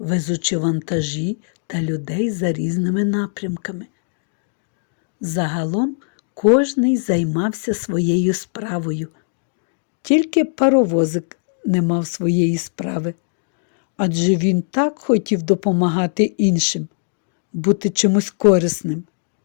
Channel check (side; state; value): right; silent; digital silence